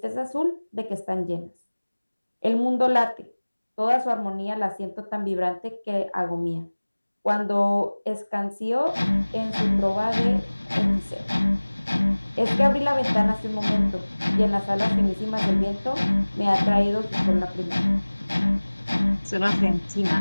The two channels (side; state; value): both; inverted; correlation -1.00